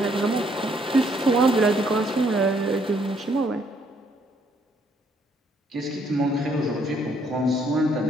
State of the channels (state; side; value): normal; both; correlation 0.68